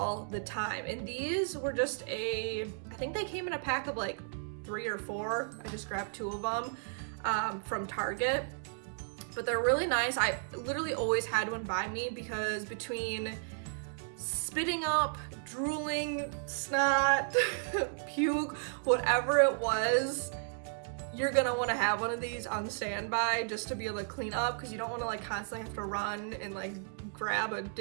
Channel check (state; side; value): silent; left; digital silence